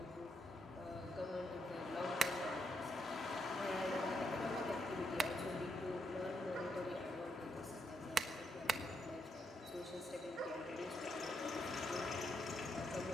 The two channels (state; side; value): normal; both; correlation 0.79